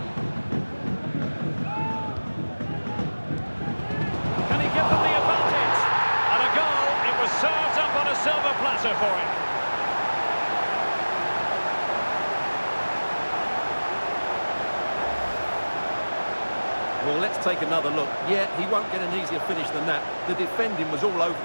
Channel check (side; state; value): both; inverted; correlation -1.00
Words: Can he give them the advantage? And a goal. It was served up on a silver platter for him. Well, let's take another look. Yeah, he won't get an easier finish than that. The defending was all over